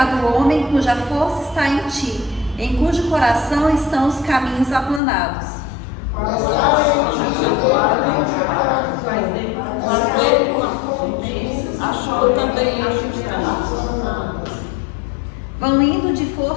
o homem cuja força está em ti, em cujo coração estão os caminhos aplanados. Achou também a justiça. Vão indo de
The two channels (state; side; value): drops out; right; at 5.0 s